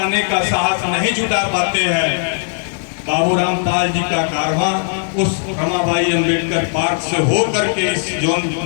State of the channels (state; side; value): silent; right; 56 dB below the other